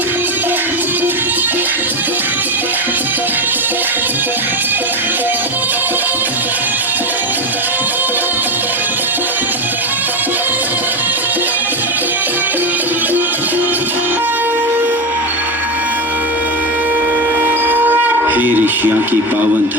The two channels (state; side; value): normal; both; correlation 0.16